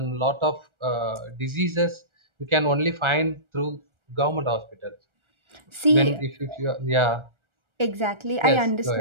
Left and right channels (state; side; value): late; left; 1.4 ms